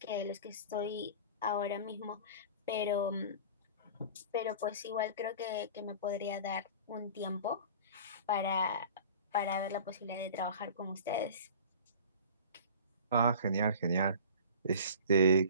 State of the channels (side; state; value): both; inverted; correlation -0.39